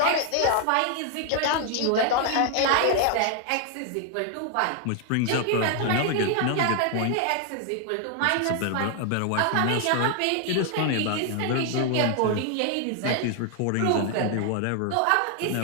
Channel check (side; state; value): both; different; correlation 0.00